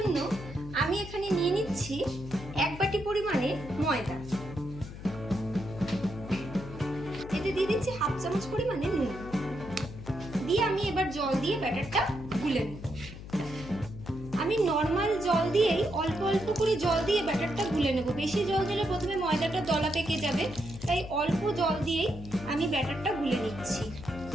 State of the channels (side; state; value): left; noise; hum, 12 dB below the sound